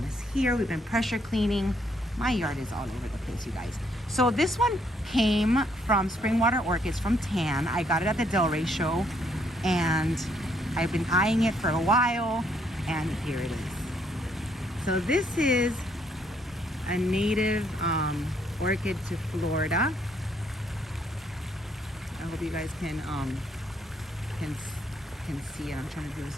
mess here. We've been pressure cleaning. My yard is all over the place, you guys. So this one came from Springwater Orchids from Tan. I got it at the Delray show, and I've been eyeing it for a while, and here it is. So this is a native orchid to Florida. I hope you guys can see it. I'm trying to do this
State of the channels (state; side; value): normal; both; correlation 0.70